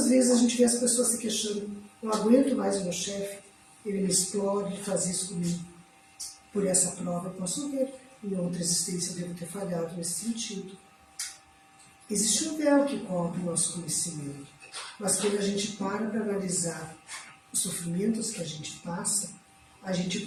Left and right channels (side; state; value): both; identical; correlation 1.00